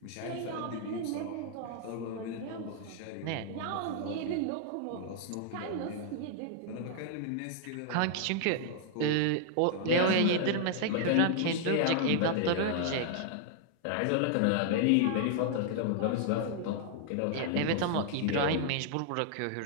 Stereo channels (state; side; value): different; both; correlation -0.01